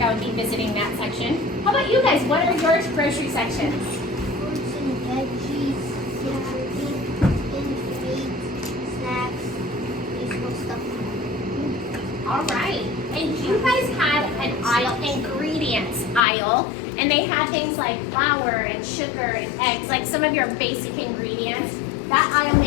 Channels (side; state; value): right; drops out; at 16.2 s